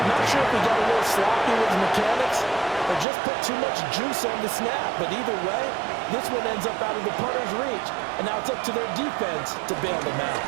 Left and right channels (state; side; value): drops out; left; at 3.1 s